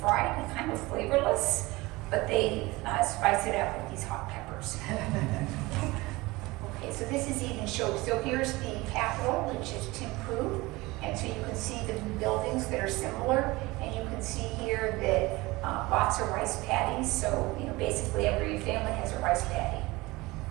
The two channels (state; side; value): quieter; left; 21.5 dB